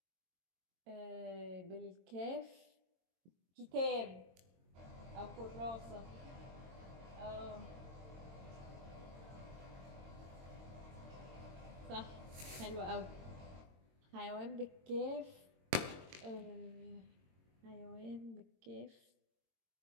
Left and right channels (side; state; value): left; late; 22 ms